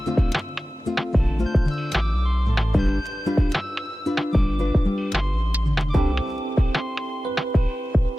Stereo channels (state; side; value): normal; both; correlation 0.95